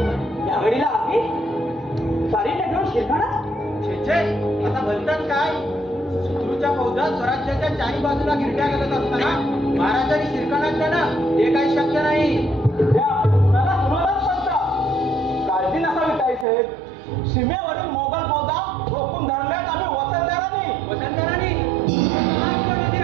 या घडीला आम्ही सारी घेऊन शिरखाणा? छे आता बोलतात काय? शत्रूच्या फौजात स्वराज्याच्या चारी बाजूला गिरट्या घालत असताना महाराजांनी शिरकाणात देणं हे काही शक्य नाही. कुणाला कुणालाच पडतं. काळजी नसावी ताई साहेब. सीमेवरील मोगल फौजा रोखून धरल्यात आम्ही वसंतराणी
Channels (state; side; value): drops out; left; at 16.4 s